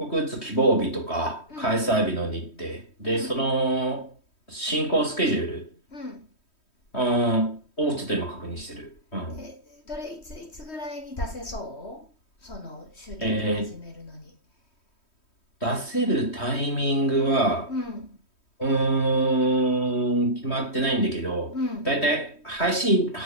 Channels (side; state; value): right; late; 3.1 ms